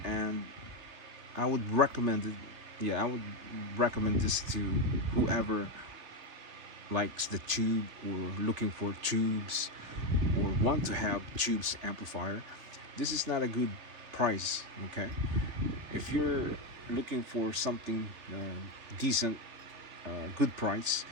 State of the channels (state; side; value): late; left; 3.4 ms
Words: and I would recommend it. Yeah, I would recommend this to whoever likes the tube or looking for tubes or want to have tubes amplifier. This is not a good price, okay? If you're looking for something decent, good price,